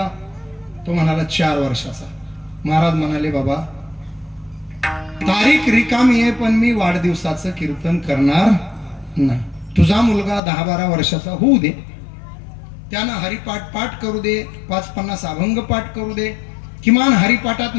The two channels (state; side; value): drops out; right; at 10.4 s